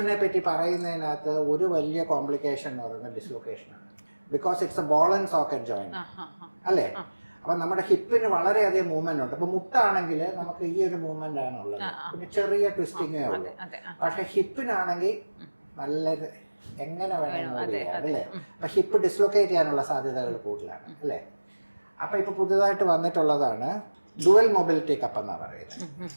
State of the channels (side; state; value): both; inverted; correlation -1.00